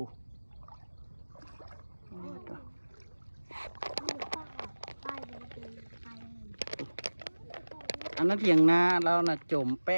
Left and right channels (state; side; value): inverted; both; correlation -1.00